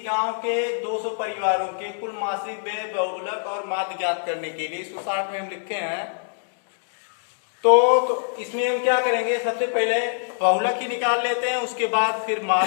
गांव के 200 परिवारों के कुल मासिक व्यय बहुलक और माध्य ज्ञात करने के लिए, इसको 60 में हम लिखे हैं। तो इसमें हम क्या करेंगे, सबसे पहले बहुलक ही निकाल लेते हैं, उसके बाद फिर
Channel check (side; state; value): right; silent; digital silence